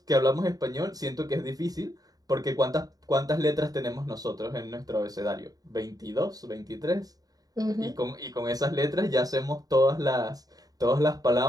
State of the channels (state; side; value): late; left; 0.18 ms